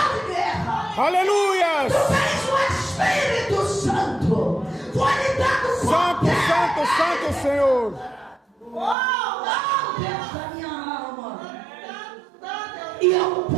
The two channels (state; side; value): drops out; left; at 9.0 s